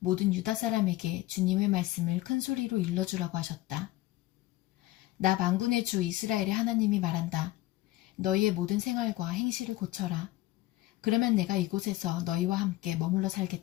유다 사람에게 주님의 말씀을 큰 소리로 일러주라고 하셨다. 나 만군의 주 이스라엘의 하나님이 말한다. 너희의 모든 생활과 행실을 고쳐라. 그러면 내가 이곳에서 너희와 함께 머물러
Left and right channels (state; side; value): quieter; right; 17.0 dB